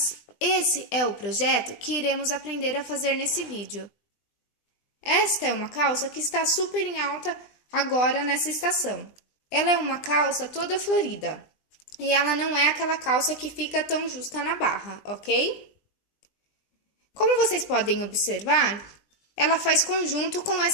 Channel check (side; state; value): right; late; 20 ms